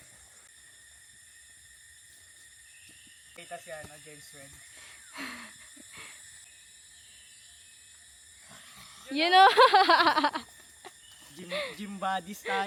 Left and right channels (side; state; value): both; identical; correlation 1.00